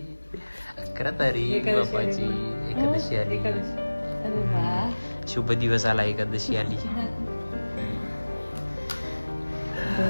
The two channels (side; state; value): both; inverted; correlation -1.00